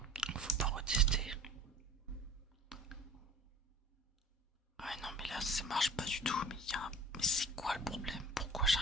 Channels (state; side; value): normal; both; correlation 0.43